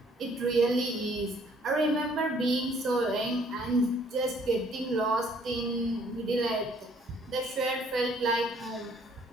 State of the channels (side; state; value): both; normal; correlation 0.61